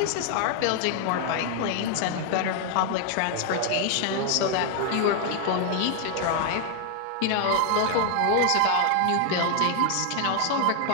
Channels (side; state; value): both; different; correlation 0.00